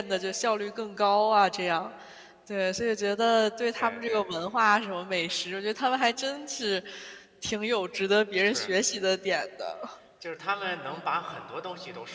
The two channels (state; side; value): identical; both; correlation 1.00